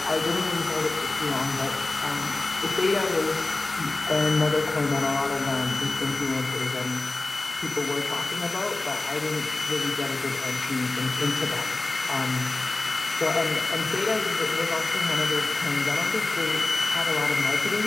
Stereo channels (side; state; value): right; quieter; 3.2 dB